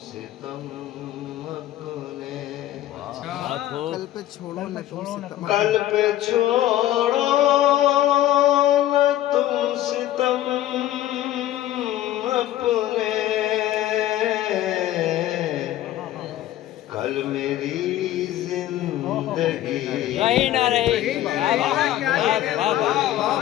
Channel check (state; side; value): quieter; right; 13.5 dB